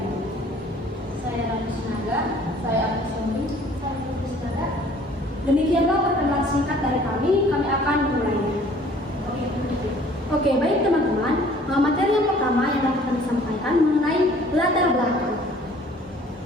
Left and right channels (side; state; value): both; normal; correlation 0.54